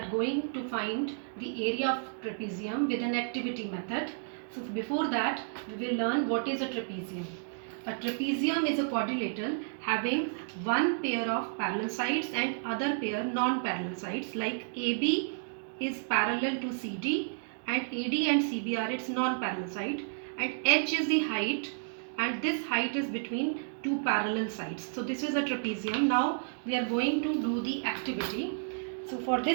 going to find the area of trapezium with an activity method. So before that we will learn what is a trapezium. A trapezium is a quadrilateral having one pair of parallel sides and other pair non-parallel sides, like AB is parallel to CD and AD and CB are its non-parallel side, and H is the height, and this height is between two parallel sides. So this is a trapezium. Now we are going to do the activity. So for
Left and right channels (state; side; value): silent; left; digital silence